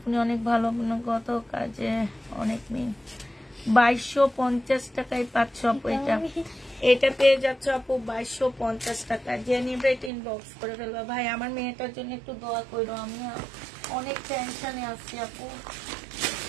অনেক ভালো, গত কাজে অনেক মেয়ে, 2250 টাকায় পাচ্ছ আপু। এটা পেয়ে যাচ্ছ আপু 2250 টাকা। যে নিবে এটা ইনবক্স করে ফেলবা। ভাই আমার মেয়েটার জন্য একটু দোয়া করো, আমি অনেক টেনশনে আছি আপু।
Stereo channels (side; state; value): left; drops out; at 10.1 s